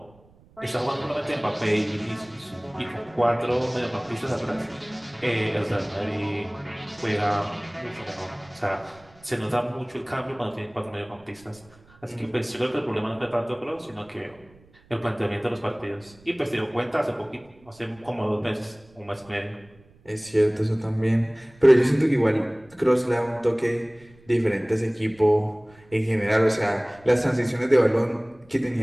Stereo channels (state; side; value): noise; right; rumble, 28 dB below the sound